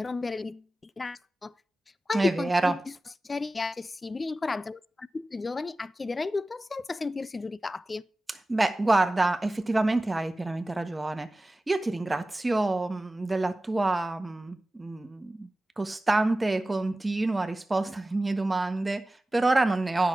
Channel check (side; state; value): both; normal; correlation 0.96